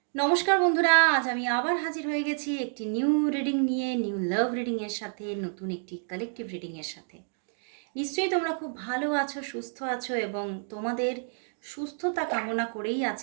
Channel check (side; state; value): left; silent; digital silence